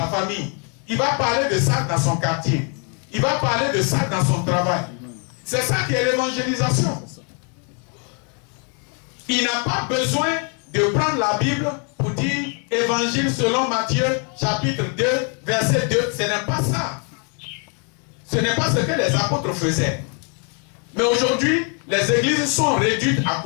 famille. Il va parler de ça dans son quartier. Il va parler de ça dans son travail. C'est ça qui est l'évangélisation. Il n'a pas besoin de prendre la Bible pour dire Évangile selon Matthieu, chapitre 2, verset 2. Ce n'est pas ça. Ce n'est pas ce que les apôtres faisaient. Mais aujourd'hui, les églises sont réduites à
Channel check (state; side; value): quieter; right; 38.4 dB